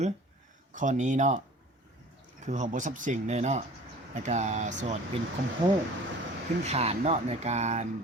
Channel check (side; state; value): both; normal; correlation 0.45